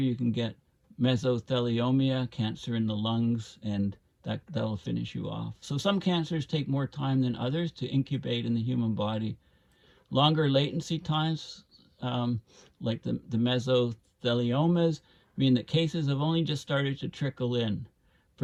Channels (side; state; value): both; identical; correlation 1.00